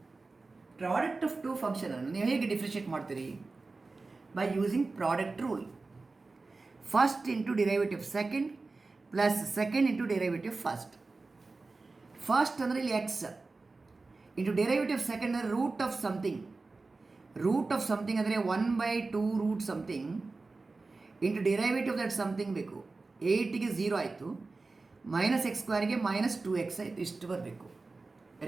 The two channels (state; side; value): quieter; left; 3.7 dB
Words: Product of two function annu ನೀವು ಹೇಗೆ differentiate ಮಾಡ್ತೀರಿ? By using product rule. First into derivative second plus second into derivative first. First ಅಂದರೆ ಇಲ್ಲಿ x into derivative second ಅಂದರೆ root of something. root of something ಅಂದರೆ 1/2 root something into derivative that something ಬೇಕು. 8ಗೆ 0 ಆಯಿತು, minus X ಸ್ಕ್ವೇರ್ಗೆ -2x ಆಯಿತು, ಇಷ್ಟು ಬರಬೇಕು.